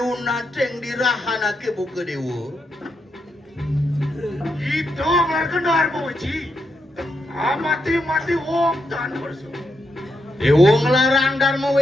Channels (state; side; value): normal; both; correlation 0.82